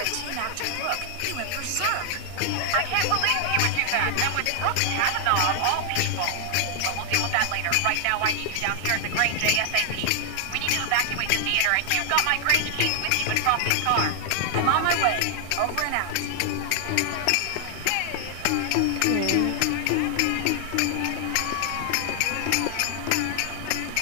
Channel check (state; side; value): different; both; correlation 0.00